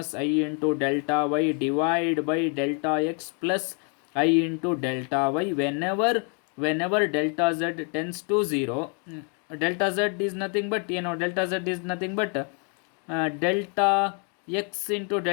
I into delta y divide by delta X plus I into delta y whenever delta z tends to 0, delta z is nothing but delta z is nothing but delta x into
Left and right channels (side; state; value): right; quieter; 38.8 dB